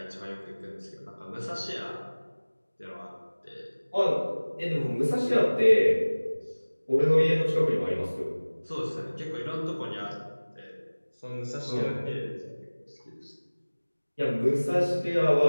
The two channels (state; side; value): inverted; both; correlation -1.00